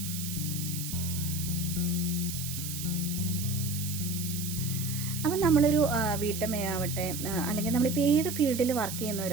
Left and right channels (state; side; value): noise; right; hiss, 7 dB below the sound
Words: അപ്പം നമ്മളൊരു വീട്ടമ്മയാവട്ടെ, അല്ലെങ്കിൽ നമ്മളിപ്പോൾ ഏത് ഫീൽഡിൽ വർക്ക്